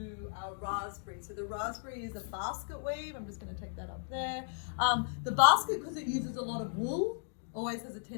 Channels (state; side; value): silent; right; digital silence